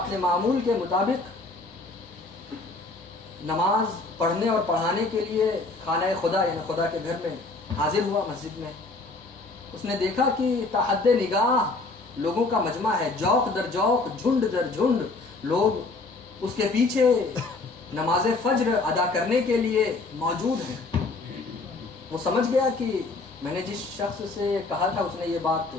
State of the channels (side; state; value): right; quieter; 3.5 dB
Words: معمول کے مطابق نماز پڑھنے اور پڑھانے کے لیے خانہ خدا یعنی خدا کے گھر میں حاضر ہوا مسجد میں. اس نے دیکھا کہ تحد نگاہ لوگوں کا مجمع ہے، جوق در جوق، جھنڈ در جھنڈ لوگ اس کے پیچھے نماز فجر ادا کرنے کے لیے موجود ہیں. وہ سمجھ گیا کہ میں نے جس شخص سے کہا تھا اس نے یہ بات